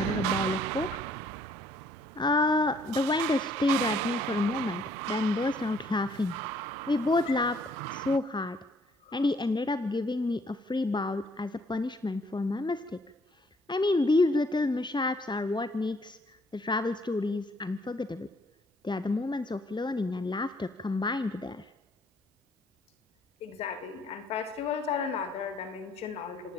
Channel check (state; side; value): normal; both; correlation 0.64